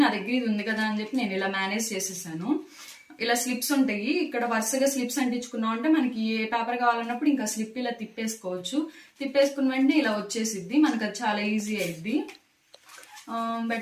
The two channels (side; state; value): both; identical; correlation 1.00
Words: నా దగ్గర ఇది ఉంది కదా అని చెప్పి నేను ఇలా మేనేజ్ చేసేసాను. ఇలా స్లిప్స్ ఉంటాయి, ఇక్కడ వరుసగా స్లిప్స్ అంటించుకున్నాం అంటే మనకి ఏ పేపర్ కావాలన్నప్పుడు ఇంకా స్లిప్ ఇలా తిప్పేసుకోవచ్చు. తిప్పేసుకున్న వెంటనే ఇలా వచ్చేసిద్ది, మనకు అది చాలా ఈజీ అయింది.